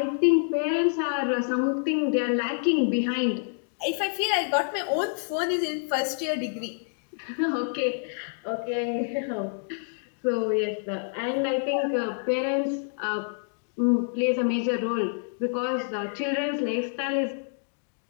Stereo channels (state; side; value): silent; right; digital silence